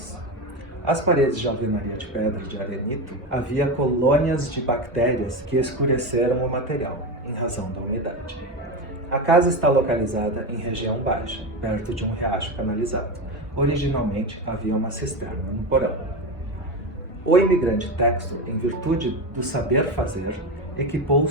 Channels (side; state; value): both; normal; correlation 0.18